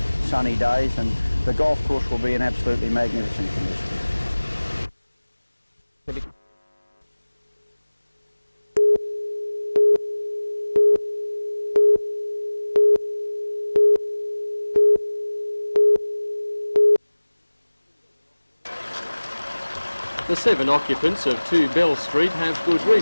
sunny days, and the golf course will be in absolutely magnificent condition. The 7 occupants of 2 Bell Street have good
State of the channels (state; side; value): inverted; both; correlation -1.00